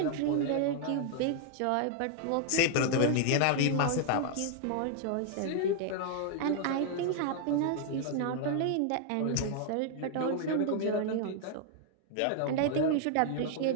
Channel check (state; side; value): different; both; correlation 0.00